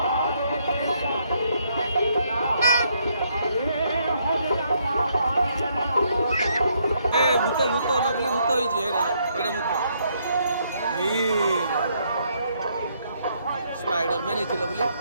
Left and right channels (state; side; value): inverted; both; correlation -0.72